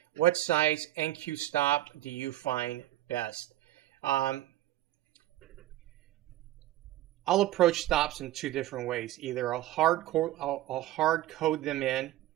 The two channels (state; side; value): quieter; left; 14.9 dB